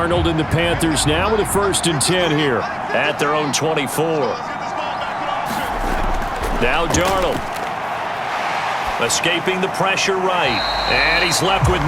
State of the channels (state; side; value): identical; both; correlation 1.00